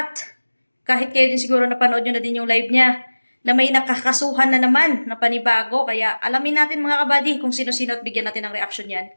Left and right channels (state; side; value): inverted; both; correlation -1.00